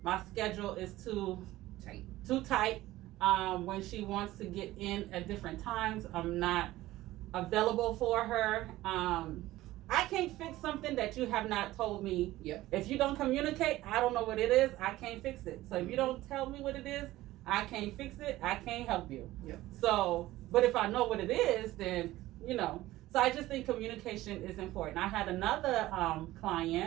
my schedule is too tight. When she wants to get in at different times, I'm not available for her. I can't fix something that you have not told me. Yep. If you don't communicate, I don't know what it is. I can't fix it. So if you don't tell me what it is, I can't fix it. I can't help you. Yep. So, but if I know what it is, then So I just think communication is important. I had another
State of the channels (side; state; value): left; quieter; 16.5 dB